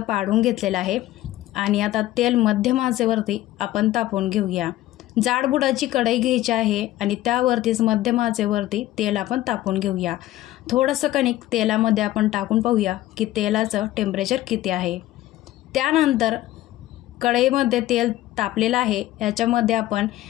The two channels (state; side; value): quieter; right; 15.2 dB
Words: पाडून घेतलेल्या आहे आणि आता तेल मध्यम आचेवरती आपण तापवून घेऊया। जाडबुडाची कढई घ्यायची आहे आणि त्यावरतीच मध्यम आचेवरती तेल आपण तापवून घेऊया। थोडंसं कणिक तेलामध्ये आपण टाकून पाहूया की तेलाचं टेम्परेचर किती आहे। त्यानंतर कढईमध्ये तेल तापलेलं आहे, याच्यामध्ये आपण